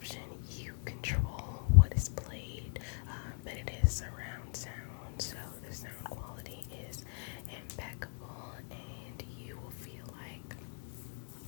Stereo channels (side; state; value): right; silent; 52 dB below the other